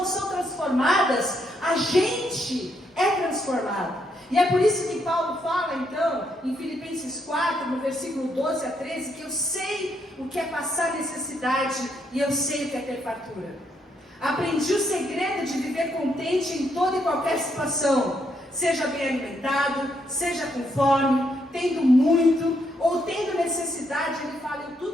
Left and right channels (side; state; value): both; normal; correlation 0.76